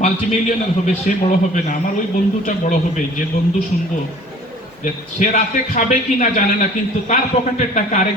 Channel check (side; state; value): both; normal; correlation 0.49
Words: মাল্টিমিলিয়নার হবে সে বড় হবে না, আমার ওই বন্ধুটা বড় হবে যে বন্ধু শুনবো যে সে রাতে খাবে কি না জানে না কিন্তু তার পকেটের টাকা